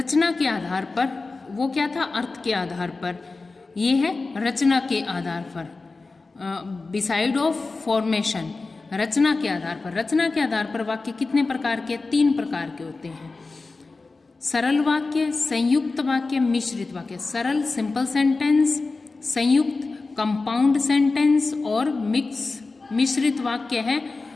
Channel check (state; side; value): quieter; right; 3.7 dB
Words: के आधार पर। वो क्या था? अर्थ के आधार पर। ये है रचना के आधार पर, बिसाइड ऑफ फॉर्मेशन। रचना के आधार पर। रचना के आधार पर वाक्य कितने प्रकार के? 3 प्रकार के होते हैं। सरल वाक्य, संयुक्त वाक्य, मिश्रित वाक्य। सरल सिंपल सेंटेंस, संयुक्त कंपाउंड सेंटेंस, और मिश्रित वाक्य है